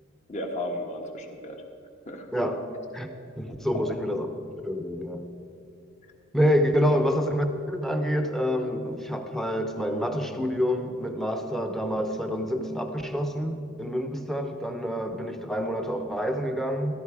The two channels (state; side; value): normal; both; correlation 0.72